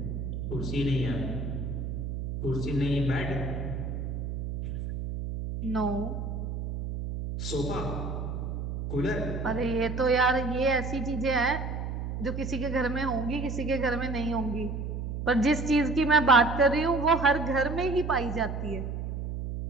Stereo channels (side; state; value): right; noise; hum, 4 dB below the sound